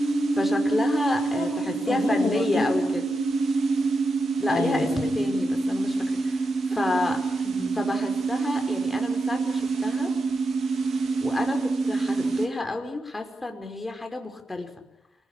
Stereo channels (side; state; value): both; normal; correlation 0.87